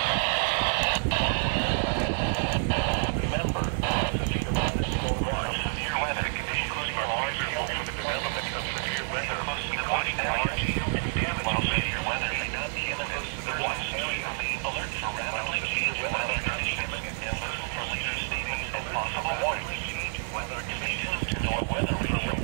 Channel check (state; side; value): silent; left; digital silence